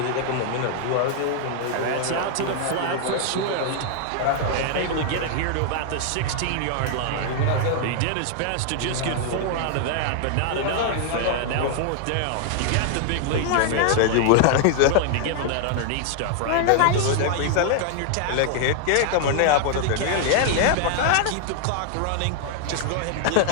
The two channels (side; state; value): both; different; correlation 0.00